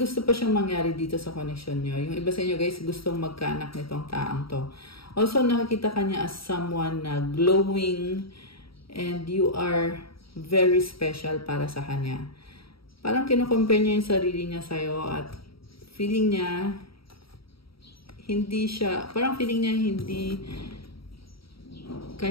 pa siyang mangyari dito sa connection nyo. Yung iba sa inyo guys, gustong magkaanak nitong taang to. Also, nakakita ka niya as someone na glowing and you are very special para sa kanya. Parang kino-compare niya yung sarili niya sa'yo at feeling niya hindi siya, parang feeling niya hindi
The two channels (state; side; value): late; right; 0.75 ms